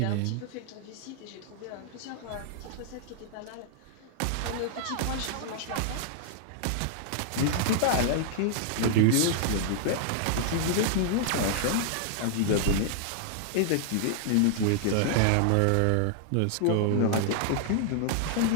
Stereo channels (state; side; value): different; both; correlation -0.01